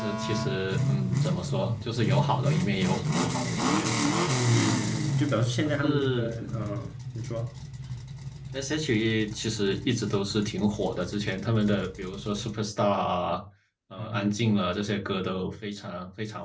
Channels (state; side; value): identical; both; correlation 1.00